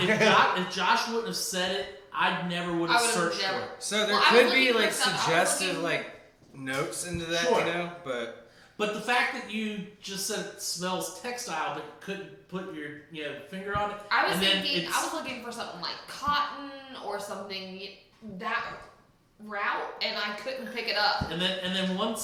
Josh wouldn't have said it, I never would have I would've searched never- for it. So there Well, I could was be looking for like stuff- I was suggestive looking- like notes into that, Sure. but But the fact that you just said it smells textile, but couldn't put your finger on it. I was And then thinking, it's- I was looking for something like cotton or something that route, and I couldn't pick it up. And then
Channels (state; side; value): identical; both; correlation 1.00